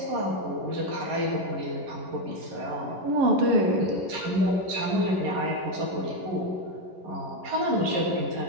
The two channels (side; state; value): left; late; 11 ms